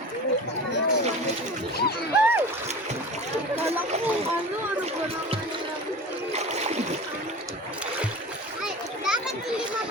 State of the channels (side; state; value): both; normal; correlation 0.35